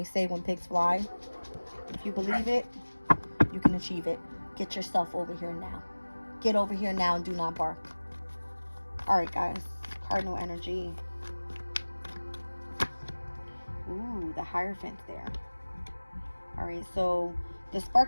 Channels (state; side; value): inverted; both; correlation -1.00